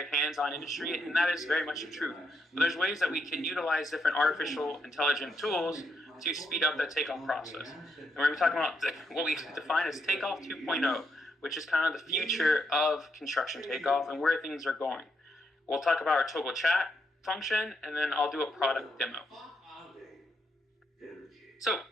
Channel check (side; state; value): both; normal; correlation 0.78